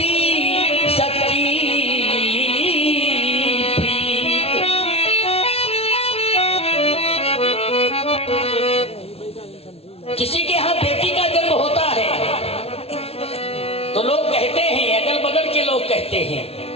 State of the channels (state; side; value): late; right; 0.29 ms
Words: किसी के यहां बेटी का जन्म होता है तो लोग कहते हैं, अगल बगल के लोग कहते हैं,